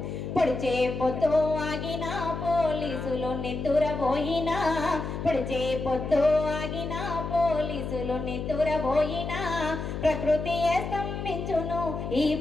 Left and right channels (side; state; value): left; noise; hum, 5 dB below the sound